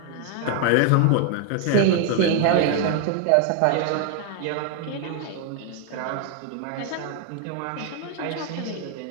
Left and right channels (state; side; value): different; both; correlation 0.00